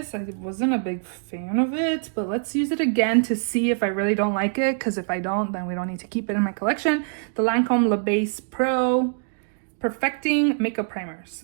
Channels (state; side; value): silent; left; digital silence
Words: I wasn't a big fan of it, but let's use it again to see if I really don't like it, because if I don't, then we don't need to keep it in my collection. The Lancome Le Base Pro Perfecting Makeup Primers.